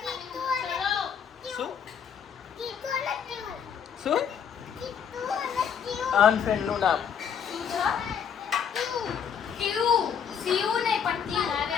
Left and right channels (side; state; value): right; quieter; 7.6 dB